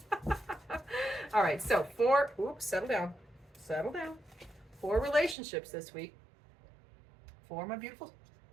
All right, so settle down. For relationships this week, for my beautiful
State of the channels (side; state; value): left; drops out; at 5.4 s